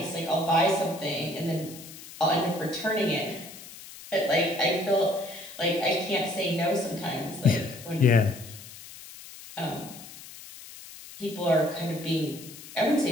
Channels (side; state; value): left; noise; hiss, 16 dB below the sound